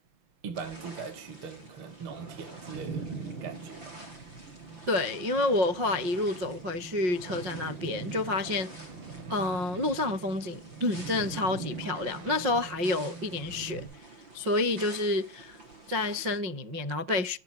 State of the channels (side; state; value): left; late; 5.6 ms